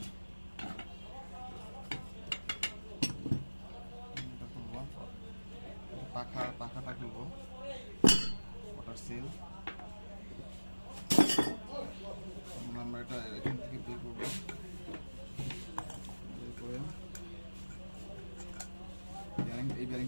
পাখাটা খুলবো, ওয়াটার সিল। আমরা এটা এখান থেকে বের করবো, বের করে এই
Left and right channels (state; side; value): inverted; both; correlation -1.00